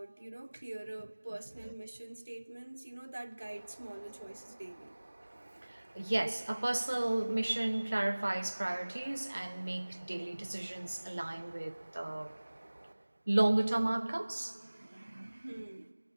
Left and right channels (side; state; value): both; inverted; correlation -1.00